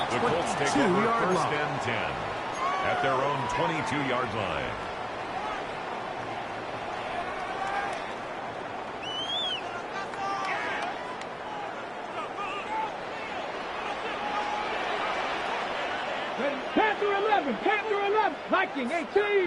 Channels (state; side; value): identical; both; correlation 1.00